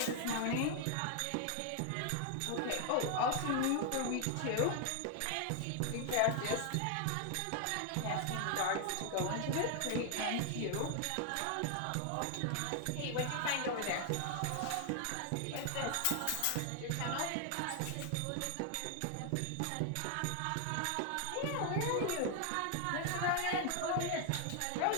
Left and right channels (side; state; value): both; different; correlation 0.00